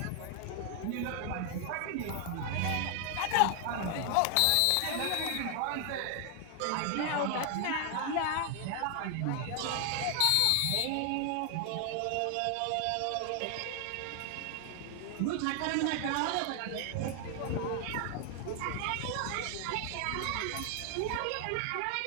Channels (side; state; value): both; different; correlation 0.00